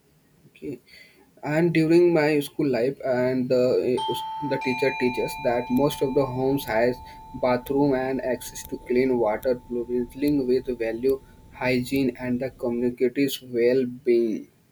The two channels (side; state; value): both; identical; correlation 1.00